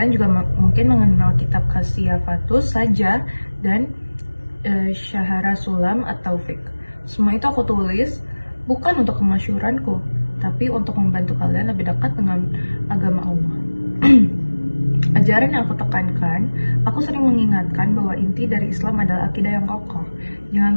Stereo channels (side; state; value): both; inverted; correlation -1.00